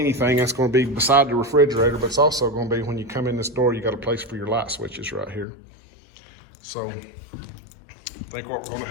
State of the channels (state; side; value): drops out; right; at 5.5 s